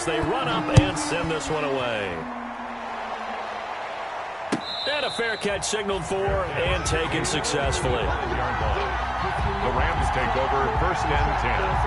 they run up and send this one away. And a fair catch signaled for and taken successfully. The Rams take over first and 10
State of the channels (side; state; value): both; identical; correlation 1.00